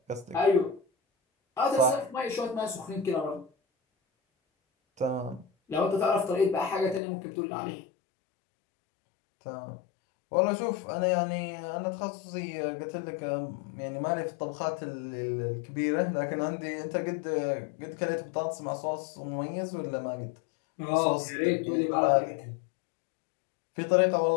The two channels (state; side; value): drops out; right; at 7.0 s